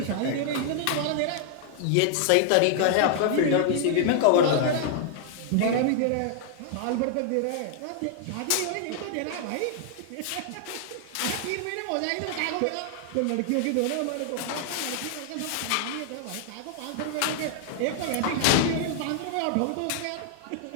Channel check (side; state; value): both; different; correlation -0.01